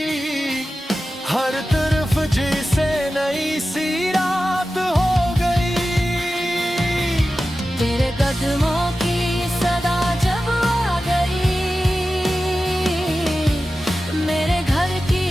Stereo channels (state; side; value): normal; both; correlation 0.94